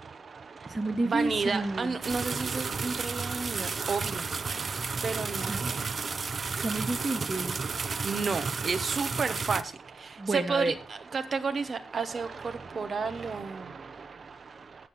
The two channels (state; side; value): quieter; left; 3.9 dB